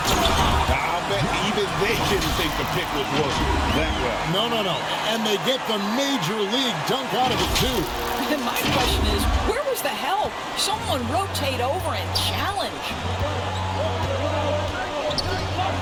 I'll bet even they didn't think the pick would work that well. No. And they get the major league dunk out of it, too. And my question is, where was the help? Someone rotate over and challenge.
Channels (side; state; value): both; identical; correlation 1.00